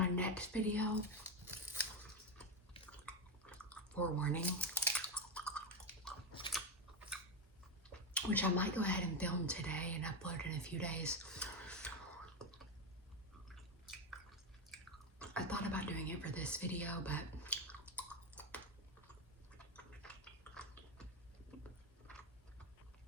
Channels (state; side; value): normal; both; correlation 0.12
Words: next video, forewarning, which I might go ahead and film today and upload in a few days. I thought about doing it for this video, but